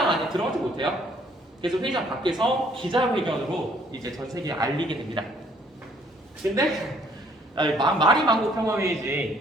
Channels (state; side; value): normal; both; correlation 0.62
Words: 안에 들어가지 못해요. 그래서 회의장 밖에서 기자회견으로 이제 전 세계에 알리게 됩니다. 근데 말이 만국